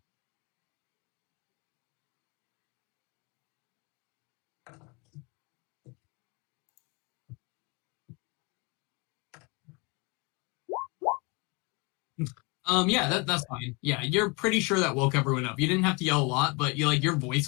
Yeah, that's fine. Yeah, you're pretty sure that woke everyone up. You didn't have to yell a lot, but you like your voice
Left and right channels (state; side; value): quieter; right; 29.2 dB